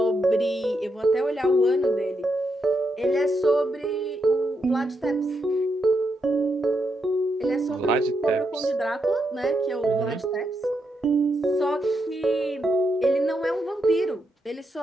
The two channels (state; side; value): normal; both; correlation 0.82